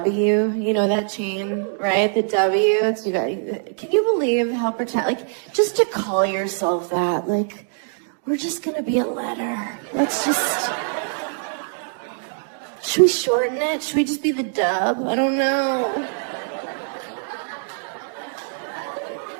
you know that chain, right? The W, it's, you guys, can you believe how like, just to call yourself that, like, we're just gonna be a letter. Let's just, should we shorten it? Should we just be the dub? I don't know.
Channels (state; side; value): silent; left; digital silence